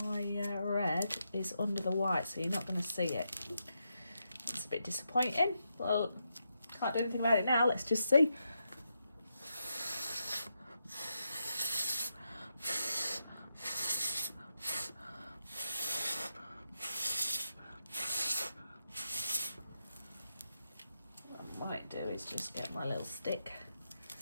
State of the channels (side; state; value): both; inverted; correlation -0.84